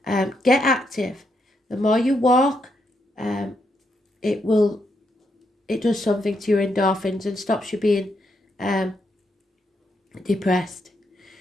Get active. The more you walk, it does something to your endorphins and stops you being depressed.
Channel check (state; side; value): normal; both; correlation 0.79